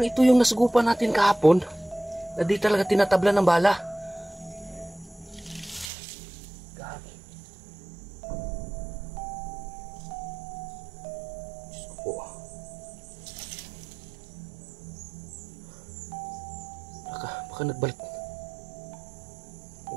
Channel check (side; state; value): left; drops out; at 5.9 s